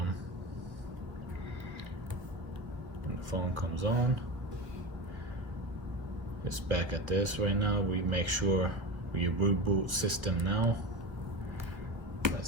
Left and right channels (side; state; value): left; late; 1.4 ms